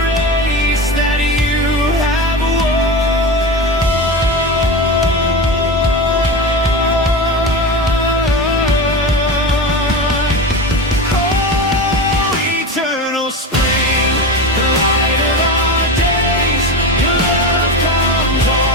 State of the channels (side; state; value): both; normal; correlation 0.24